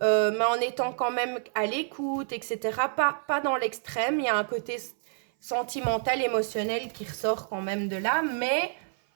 en étant quand même à l'écoute, etc. Pas dans l'extrême, il y a un côté sentimental, émotionnel qui ressort quand même de là, mais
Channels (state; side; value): silent; left; 58 dB below the other